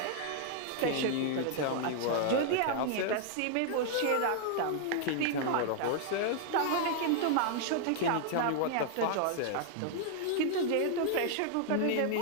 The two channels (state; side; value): different; both; correlation -0.01